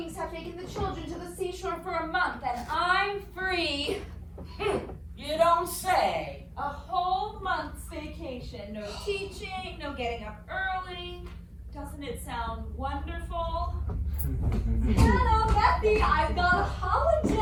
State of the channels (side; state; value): both; identical; correlation 1.00